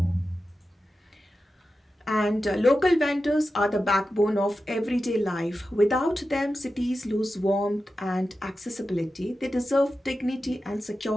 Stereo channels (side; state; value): both; normal; correlation 0.92